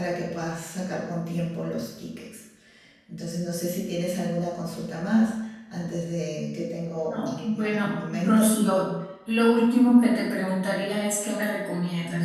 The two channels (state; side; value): identical; both; correlation 1.00